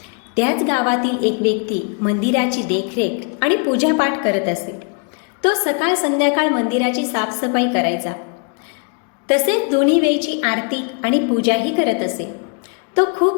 त्याच गावातील एक व्यक्ती मंदिराची देखरेख आणि पूजापाठ करत असे. तो सकाळ संध्याकाळ मंदिराची साफसफाई करायचा. तसेच दोन्ही वेळची आरती आणि पूजाही करत असे. तो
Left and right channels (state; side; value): quieter; right; 38.3 dB